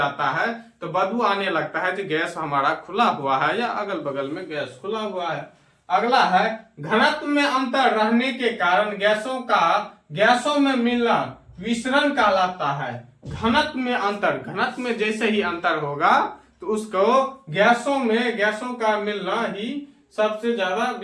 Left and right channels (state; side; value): identical; both; correlation 1.00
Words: है तो बदबू आने लगता है कि गैस हमारा खुला हुआ है या अगल बगल में गैस खुला हुआ है। अगला है घनत्व में अंतर रहने के कारण गैसों में मिलना विसरण कहलाता है। घनत्व में अंतर, घनत्व में जैसे ही अंतर होगा तो उसको गैसों का मिलना ही सबसे ज्यादा